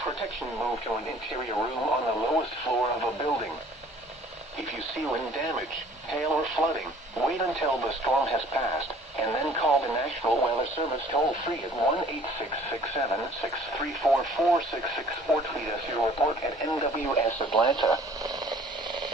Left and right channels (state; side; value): normal; both; correlation 0.53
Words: protection, move to an interior room on the lowest floor of a building. If you see wind damage, hail, or flooding, wait until the storm has passed, and then call the National Weather Service toll-free at 1-866-7-634-466 or tweet us your report at NWS Atlanta.